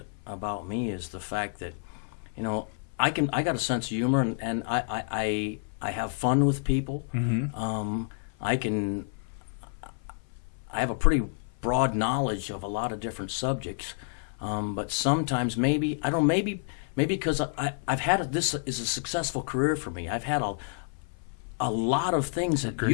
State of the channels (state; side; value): silent; right; 55 dB below the other